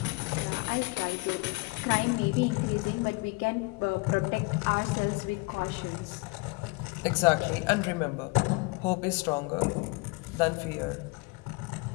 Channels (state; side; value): quieter; right; 26.2 dB